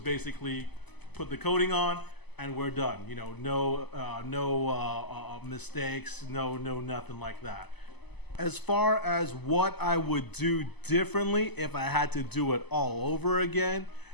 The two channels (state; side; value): late; right; 0.99 ms